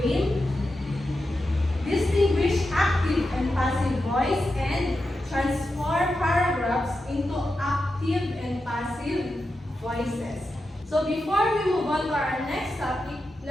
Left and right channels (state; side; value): normal; both; correlation 0.89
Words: game, distinguish active and passive voice, and transform paragraphs into active and passive voices. So before we move on to our next topic,